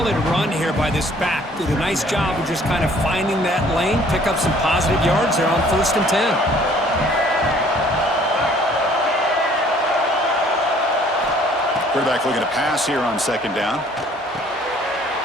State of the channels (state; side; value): normal; both; correlation 0.57